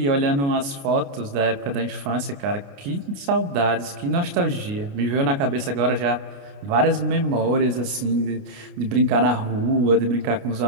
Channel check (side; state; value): left; late; 29 ms